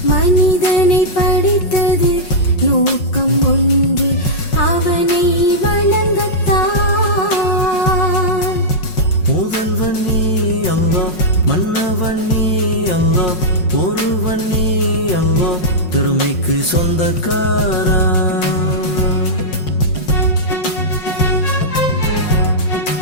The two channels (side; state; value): right; late; 5.5 ms